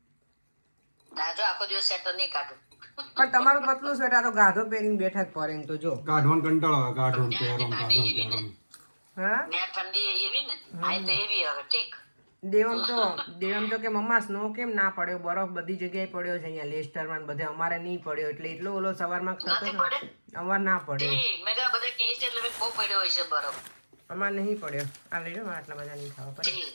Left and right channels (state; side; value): inverted; both; correlation -1.00